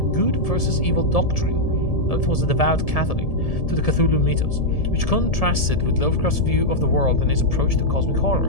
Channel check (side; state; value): right; late; 1.7 ms